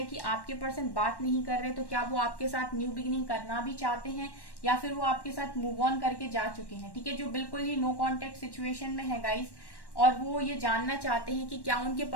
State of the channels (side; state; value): right; late; 1.1 ms